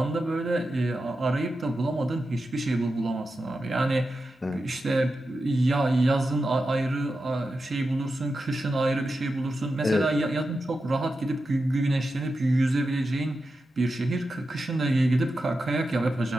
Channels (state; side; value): normal; both; correlation 0.90